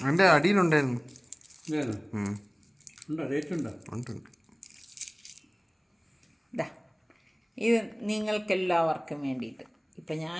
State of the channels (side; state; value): both; identical; correlation 1.00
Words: അതിന്റെ അടിയിലുണ്ടായിരുന്നു. ഉണ്ട്. ഇത് നിങ്ങൾക്കെല്ലാവർക്കും വേണ്ടിയിട്ട് ഇപ്പം